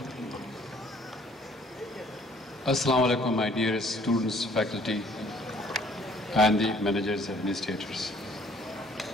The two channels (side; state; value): both; normal; correlation 0.59